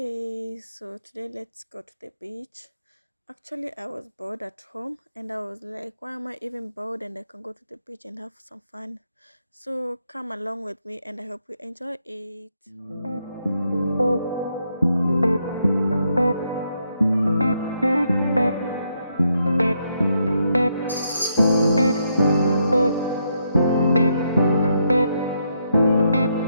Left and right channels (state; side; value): inverted; both; correlation -0.78